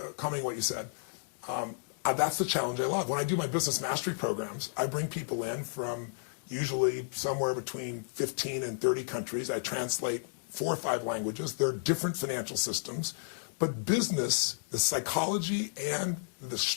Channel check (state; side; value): silent; right; digital silence